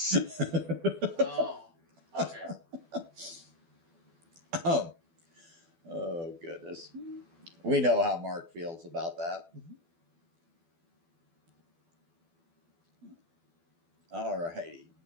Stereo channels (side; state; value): left; late; 12 ms